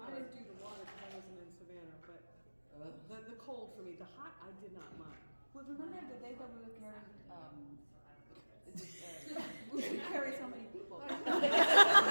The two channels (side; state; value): both; inverted; correlation -1.00